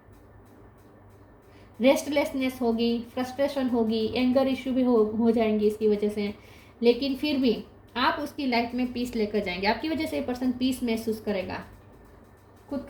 रेस्टलेसनेस होगी, फ्रस्ट्रेशन होगी, एंगर इश्यू भी हो जाएंगी इसकी वजह से। लेकिन फिर भी आप उसकी लाइफ में पीस लेकर जाएंगे। आपकी वजह से ये पर्सन पीस महसूस करेगा, खुद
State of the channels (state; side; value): identical; both; correlation 1.00